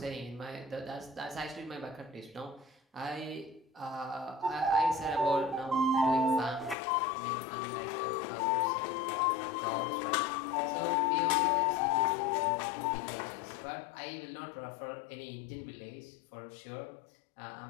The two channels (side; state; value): right; drops out; at 6.8 s